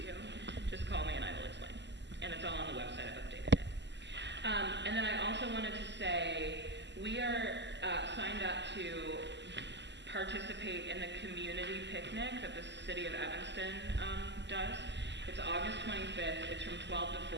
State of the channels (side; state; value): left; late; 0.51 ms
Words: you, just call me and I will explain. And it's all on the website, I've updated it. And then I also wanted to say, we are signed up to participate in the community picnic that the city of Evanston does. It's August 25th, it's from 12 to